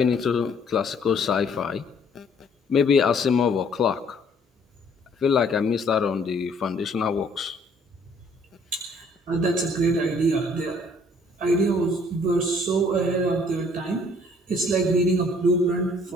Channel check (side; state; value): both; normal; correlation 0.60